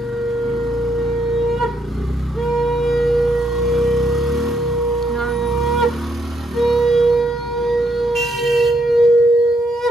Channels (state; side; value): normal; both; correlation 0.74